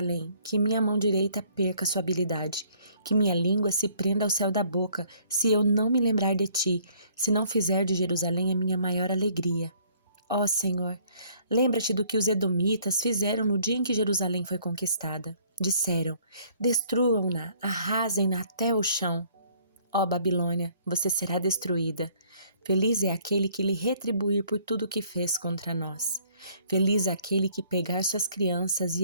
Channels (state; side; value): inverted; both; correlation -0.61